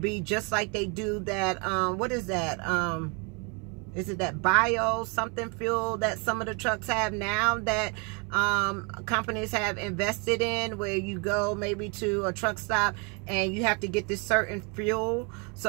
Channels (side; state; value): left; quieter; 33.4 dB